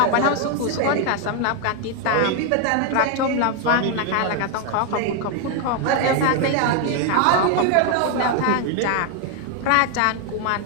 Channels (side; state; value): both; different; correlation 0.01